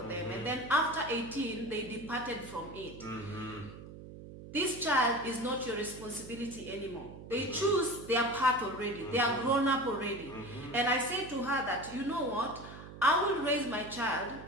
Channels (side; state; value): right; noise; hum, 14 dB below the sound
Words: them, and then after 18 they departed from it. This child is not your responsibility anymore. They choose their path already. They are grown up already. And I say to her that, you know what? I will raise my child